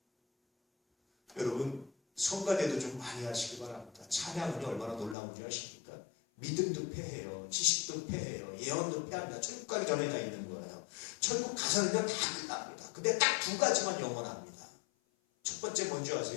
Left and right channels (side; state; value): right; drops out; at 5.2 s